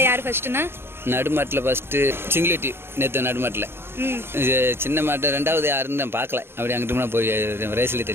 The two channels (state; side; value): late; left; 0.11 ms